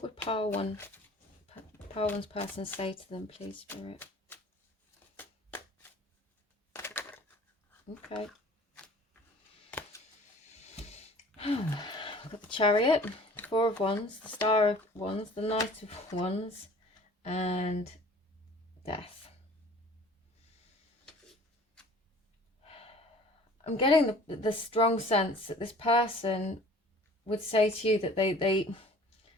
would Pile One's person say to them, please, Spirit? Okay. I've got the Chariot, the Four of Wands, the Star of Wands, the Knight of Wands, and Death. I'm getting the strong sense that this person would say to you that they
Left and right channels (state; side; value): normal; both; correlation 0.48